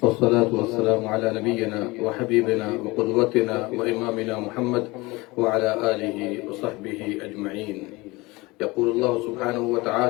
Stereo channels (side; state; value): right; quieter; 23.0 dB